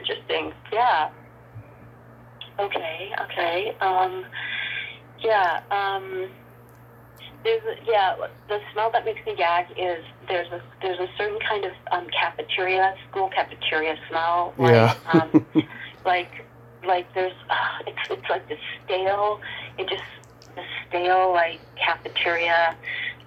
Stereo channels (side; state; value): both; identical; correlation 1.00